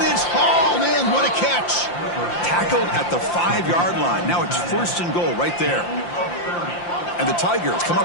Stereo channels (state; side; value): late; right; 5.8 ms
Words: it's hauled in. What a catch. Tackled at the 5-yard line. Now it's first and goal right there. And the Tigers come